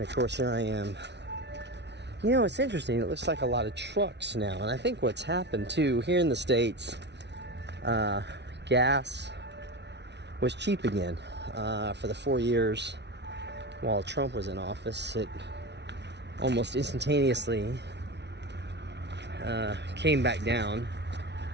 of course, here I am. You know, it's interesting. It looks like a lot of trucks now. And I think what's happened, too, here in the States, gas was cheap again. For the 4 years while Trump was in office, it almost instantaneously came back down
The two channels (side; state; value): left; late; 0.50 ms